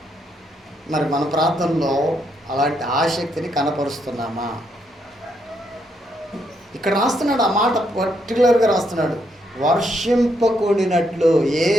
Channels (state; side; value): normal; both; correlation 0.76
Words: మరి మన ప్రార్థనలో అలాంటి ఆసక్తిని కనపరుస్తున్నామా? ఇక్కడ రాస్తున్నాడు, ఆ మాట పర్టికులర్గా రాస్తున్నాడు. వర్షింపకూడినట్లు ఏ